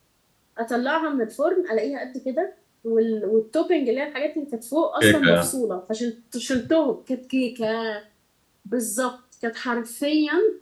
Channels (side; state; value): both; identical; correlation 1.00